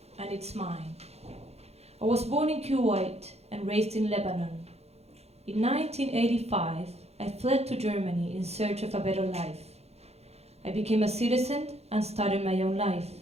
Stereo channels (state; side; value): late; left; 0.30 ms